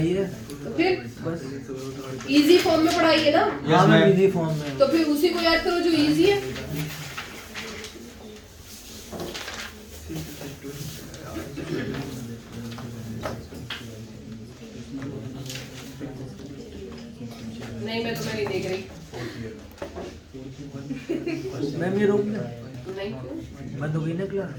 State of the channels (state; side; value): identical; both; correlation 1.00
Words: है तो फिर बस। इजी फॉर्म में पढ़ाई है ना? हाँ मैम इजी फॉर्म में। तो फिर उसी को याद करो जो इजी है। नहीं मैं तुम्हें नहीं देख रही। मैम ये रोक दे। नहीं क्यों? बंद हो गई ना क्लास।